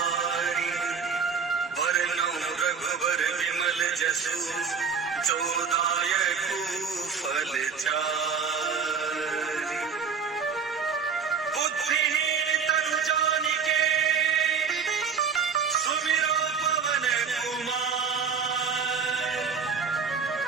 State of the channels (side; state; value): left; quieter; 6.1 dB